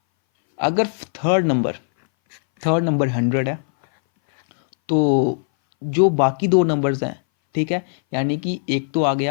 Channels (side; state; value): right; silent; 61 dB below the other